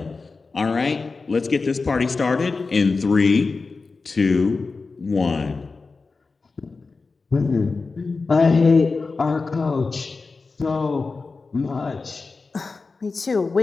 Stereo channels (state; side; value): quieter; right; 4.1 dB